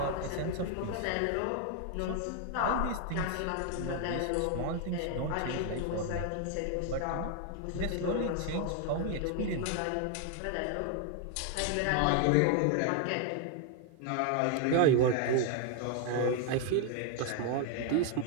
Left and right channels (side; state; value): both; different; correlation 0.00